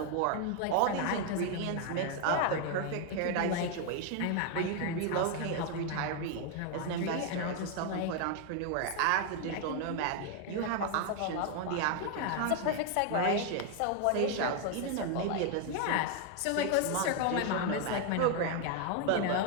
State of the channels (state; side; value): different; both; correlation 0.01